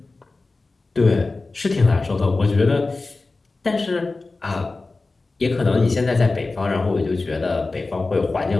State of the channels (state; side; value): quieter; right; 3.5 dB